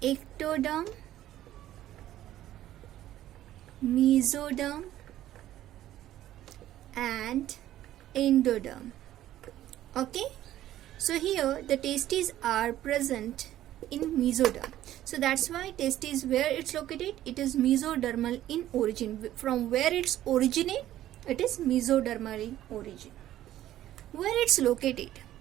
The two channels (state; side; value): quieter; left; 13.2 dB